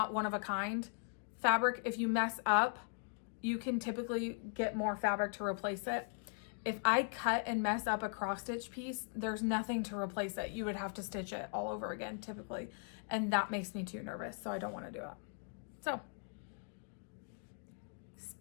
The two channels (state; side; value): silent; right; 52 dB below the other